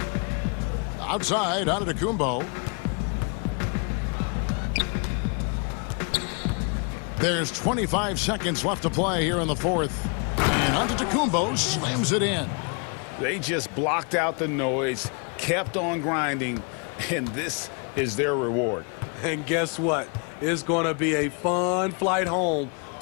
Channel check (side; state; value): right; quieter; 36.3 dB